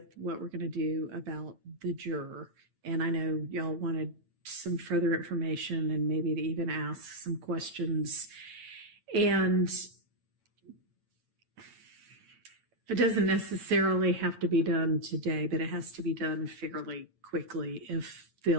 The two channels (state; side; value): late; left; 9.0 ms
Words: what we're going to do about the juror. And I know y'all wanted some further information and maybe to even ask some questions. And it doesn't necessarily have to be done today, but it has to be done fairly quickly if the